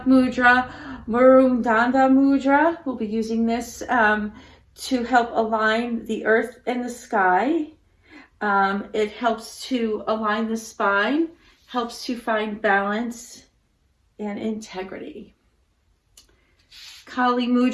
mudra, Murundanda Mudra. We'll be using this to help align the earth and the sky. It helps to align the spine, helps to find balance and integrity. Kali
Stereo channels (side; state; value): both; identical; correlation 1.00